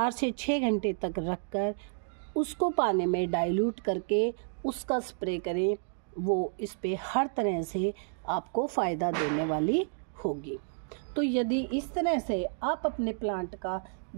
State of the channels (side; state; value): left; silent; digital silence